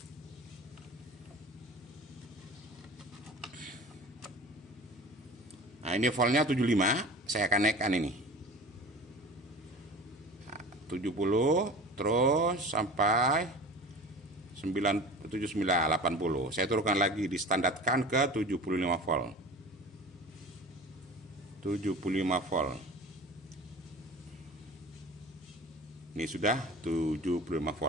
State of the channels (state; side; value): normal; both; correlation 0.37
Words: Nah, ini voltnya 75. Saya akan naikkan ini. 70 terus sampai 79 80. Saya turunkan lagi, distandarkan ke 75 volt. 75 volt. Ini sudah 75